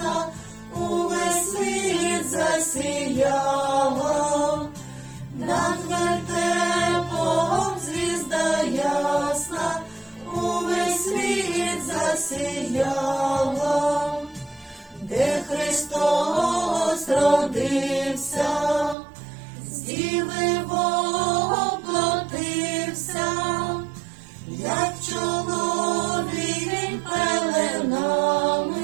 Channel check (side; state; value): left; drops out; at 18.9 s